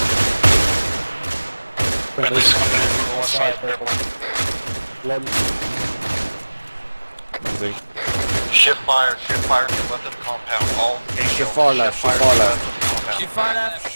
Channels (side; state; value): both; inverted; correlation -1.00